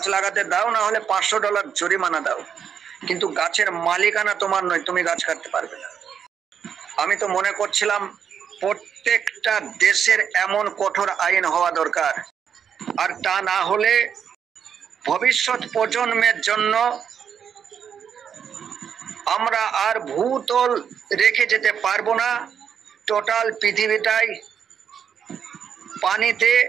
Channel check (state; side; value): quieter; left; 7.8 dB